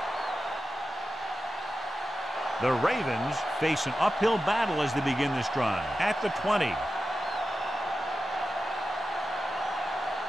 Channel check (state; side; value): normal; both; correlation 0.92